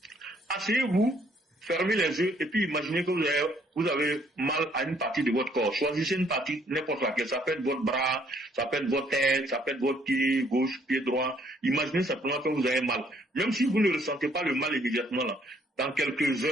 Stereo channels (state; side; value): normal; both; correlation 0.65